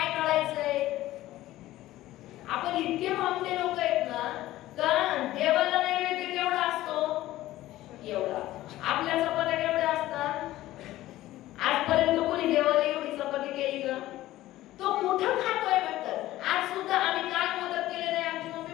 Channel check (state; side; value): quieter; right; 15.6 dB